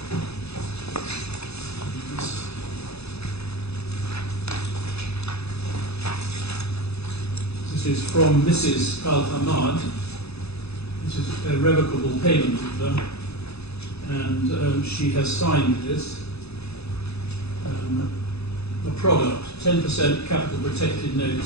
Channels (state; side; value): late; right; 0.79 ms